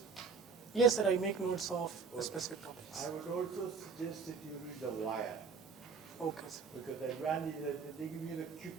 Yes, sir, I make notes of Okay. specific topics. I would also suggest that you read The Wire, Okay, sir. because the advantage is that they give you the quick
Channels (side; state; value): left; quieter; 5.4 dB